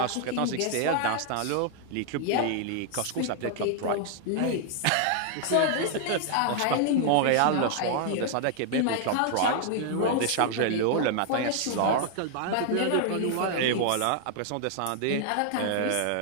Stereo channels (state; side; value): different; both; correlation 0.00